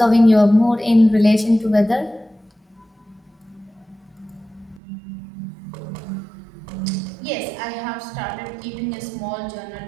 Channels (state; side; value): drops out; left; at 4.8 s